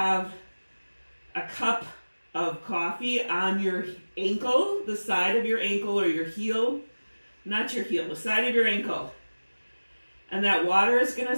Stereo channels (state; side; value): inverted; both; correlation -1.00